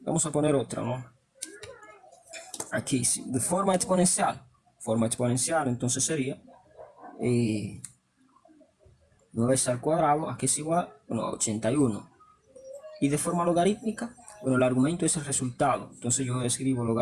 Vamos a poner otra, ¿no? Aquí, de forma exponencial. Forma exponencial, entonces sería 9 al cuadrado, aquí es igual, bueno, a 81. Y de forma logarítmica, bueno, el argumento es el resultado. Entonces yo escribo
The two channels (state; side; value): identical; both; correlation 1.00